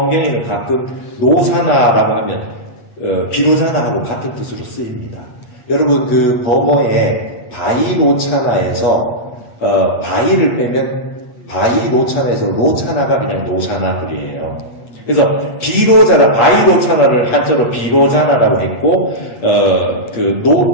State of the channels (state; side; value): late; right; 8.3 ms